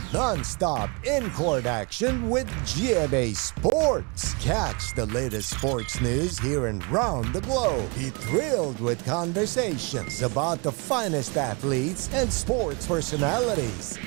non-stop in-court action with GMA Sports. Catch the latest sports news here and round the globe. Be thrilled with conversations about the finest athletes and sports personalities.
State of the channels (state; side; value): quieter; left; 30.8 dB